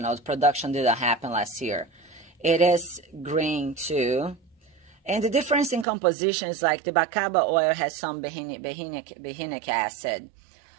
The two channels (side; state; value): left; drops out; at 5.9 s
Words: know, the production didn't happen last year. It is green too. And the difference in composition is like the bacaba oil has some behinic acid.